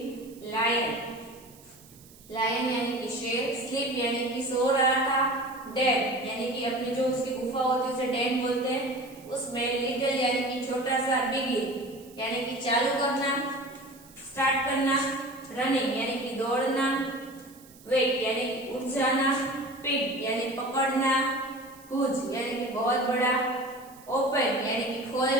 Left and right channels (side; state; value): right; noise; hiss, 24 dB below the sound